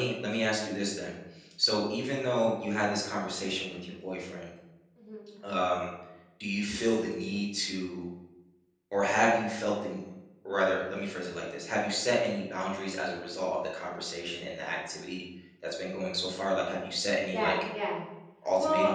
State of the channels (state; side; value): identical; both; correlation 1.00